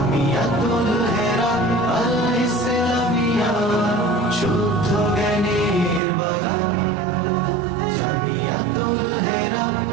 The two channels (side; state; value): left; drops out; at 6.0 s